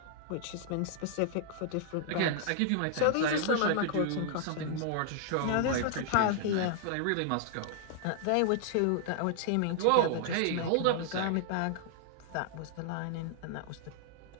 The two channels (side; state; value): both; different; correlation -0.01